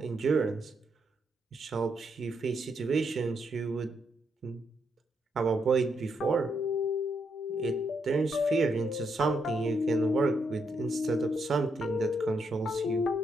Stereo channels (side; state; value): both; normal; correlation 0.78